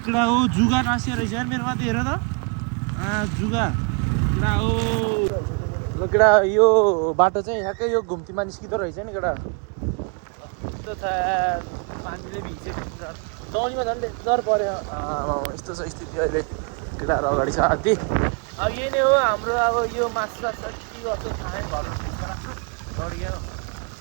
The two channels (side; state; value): left; quieter; 35.8 dB